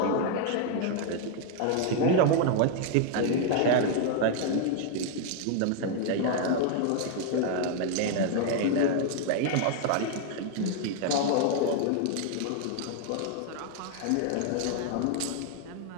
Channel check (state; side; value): different; both; correlation 0.00